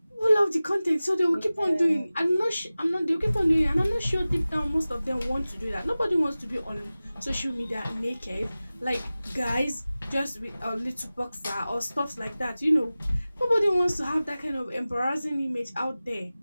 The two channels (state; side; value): inverted; both; correlation -0.97